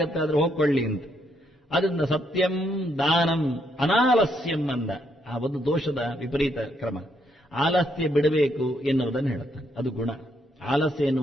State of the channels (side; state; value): both; normal; correlation 0.74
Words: ಆದ್ರೆ ಹೋಗ್ಕೊಳ್ಳಿ ಅಂತ. ಅದರಿಂದ ಸತ್ಯಂ ದಾನಂ ಅನಾಲಸ್ಯಂ ಅಂದ. ಆ ಒಂದು ದೋಷದ ವಿಪರೀತ ಕ್ರಮ. ಆಲಸ್ಯ ಬಿಡಬೇಕು ಎನ್ನುವುದನ್ನು ಹೇಳುತ್ತಾನೆ. ಅದು ಗುಣ. ಆಲಸ್ಯ